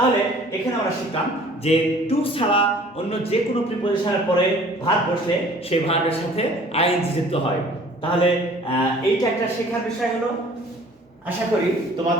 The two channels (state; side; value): normal; both; correlation 0.51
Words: এখানে আমরা শিখলাম যে টু ছাড়া অন্য যে কোনো প্রিপজিশনের পরে ভার্ব বসলে সেই ভার্বের সাথে আইএনজি যুক্ত হয়। তাহলে এইটা একটা শেখার বিষয় হলো। আশা করি